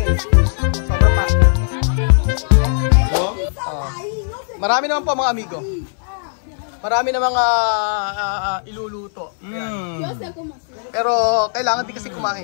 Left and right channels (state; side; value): silent; right; digital silence